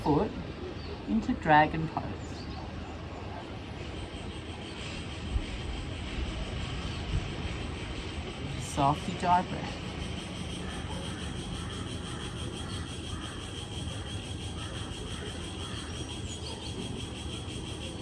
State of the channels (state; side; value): identical; both; correlation 1.00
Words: foot into dragon pose. softly diaphragm.